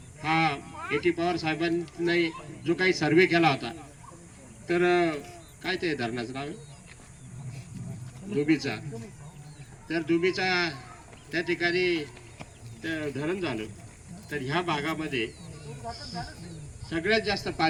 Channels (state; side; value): identical; both; correlation 1.00